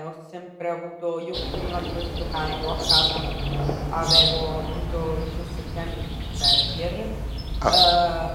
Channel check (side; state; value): both; identical; correlation 1.00